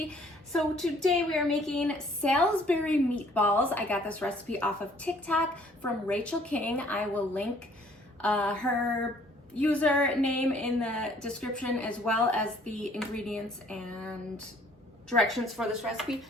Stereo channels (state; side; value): normal; both; correlation 0.59